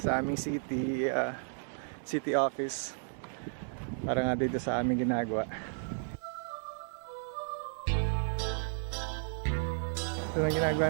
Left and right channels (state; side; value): silent; left; 55 dB below the other